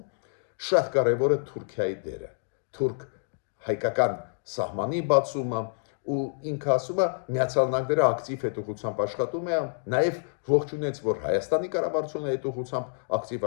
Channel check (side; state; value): right; silent; digital silence